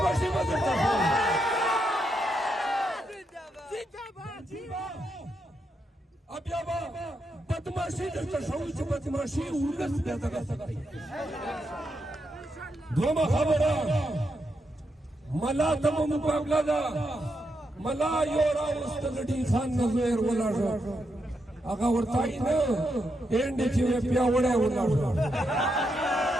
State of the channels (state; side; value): normal; both; correlation 0.82